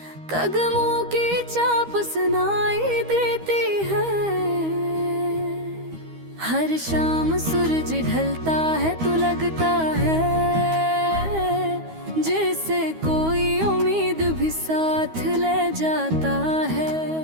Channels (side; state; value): left; late; 13 ms